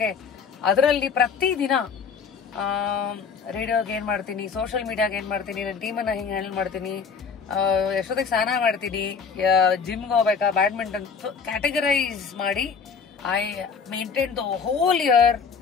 ಅದರಲ್ಲಿ ಪ್ರತಿದಿನ ರೇಡಿಯೋಗೆ ಏನ್ ಮಾಡ್ತೀನಿ, ಸೋಷಿಯಲ್ ಮೀಡಿಯಾಗೆ ಏನ್ ಮಾಡ್ತೀನಿ, ನನ್ನ ಟೀಮನ್ನ ಹಿಂಗೆ ಹ್ಯಾಂಡಲ್ ಮಾಡ್ತೀನಿ, ಎಷ್ಟೊತ್ತಿಗೆ ಸ್ನಾನ ಮಾಡ್ತೀನಿ, ಜಿಮ್ಗೆ ಹೋಗ್ಬೇಕಾ, ಬ್ಯಾಡ್ಮಿಂಟನ್, ಕ್ಯಾಟಗರೈಸ್ ಮಾಡಿ I maintain the whole year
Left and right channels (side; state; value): right; quieter; 5.8 dB